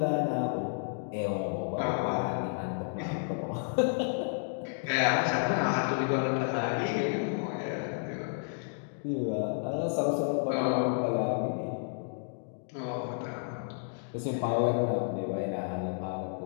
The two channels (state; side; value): silent; right; digital silence